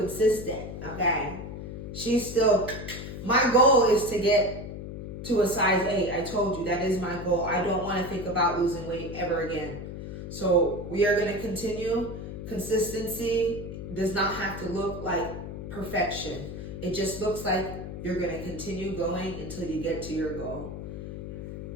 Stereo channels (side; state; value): left; noise; hum, 8 dB below the sound